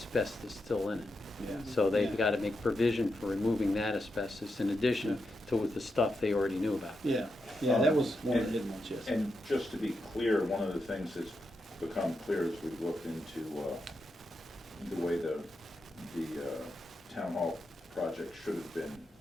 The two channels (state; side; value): normal; both; correlation 0.86